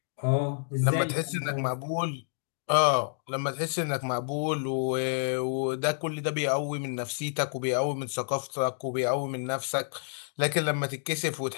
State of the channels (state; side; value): silent; right; digital silence